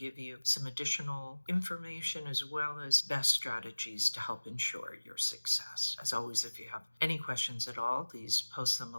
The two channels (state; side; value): inverted; both; correlation -1.00